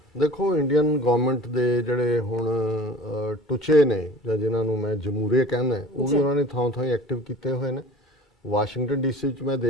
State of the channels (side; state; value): both; normal; correlation 0.43